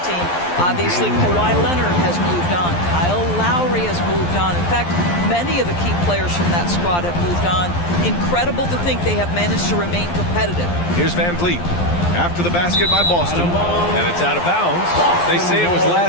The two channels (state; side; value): late; right; 12 ms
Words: team. Obviously, Kawhi Leonard has moved on. Kyle Lowry has moved on. In fact, many of the key players from that squad have moved on. Incredible to think they have managed to remain competitive. Here's Van Vliet. After the basket by Boston, and it's out of bounds. They say it was